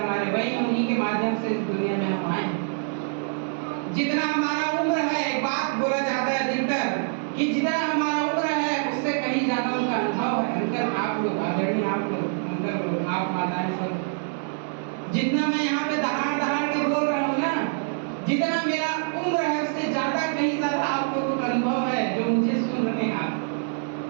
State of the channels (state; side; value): silent; left; 61 dB below the other